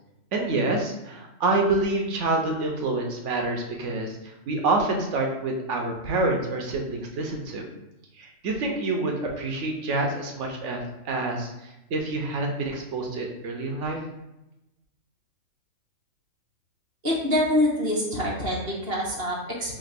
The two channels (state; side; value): late; left; 2.8 ms